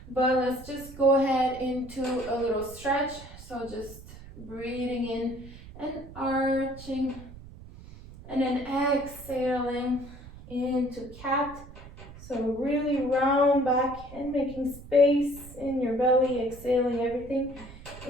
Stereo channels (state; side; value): noise; right; rumble, 16 dB below the sound